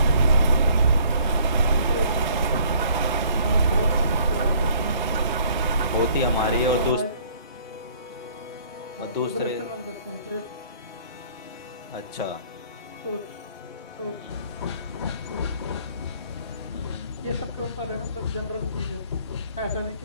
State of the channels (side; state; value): both; inverted; correlation -0.58